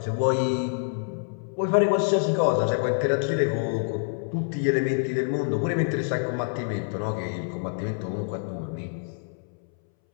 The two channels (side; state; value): right; silent; 61 dB below the other